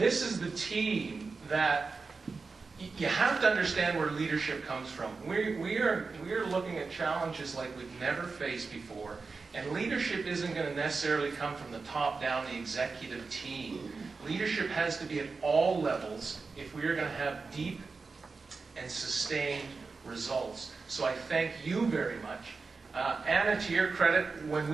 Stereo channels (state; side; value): quieter; left; 4.4 dB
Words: is the team that you have to understand where leadership comes from. We are looking at challenges like we've never faced before, and leadership isn't going to necessarily come from the top down, the executive team. Leadership has to be at all levels if we are going to have deep and sustained results. So I thank you very much. Anna, to your credit, when